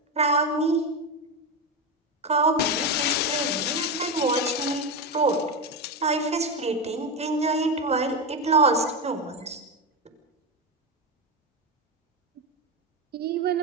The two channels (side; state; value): both; normal; correlation 0.13